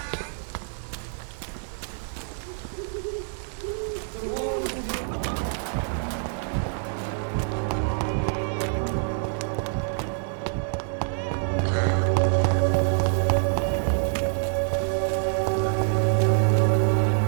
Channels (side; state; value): left; silent; digital silence